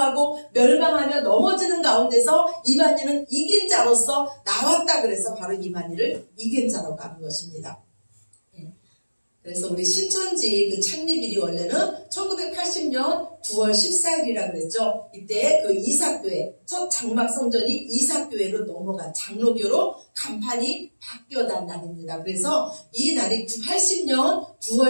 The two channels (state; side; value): inverted; both; correlation -1.00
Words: 멸망하며 넘어지는 가운데서 이만희는 이긴 자로서 나왔다. 그래서 바로 이만희를 이긴 자라고 하는 것입니다. 그래서 우리 신천지 그 창립일이 원래는 1980년 9월 14일이라 그랬죠. 이때 그 이사교회, 첫 장막 성전이 이사교회로 넘어간 장로교로 간판이 바뀌어난 날입니다. 그래서 이 날이 80년 9월